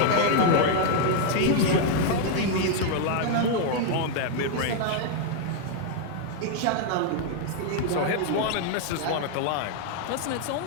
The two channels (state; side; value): different; both; correlation 0.00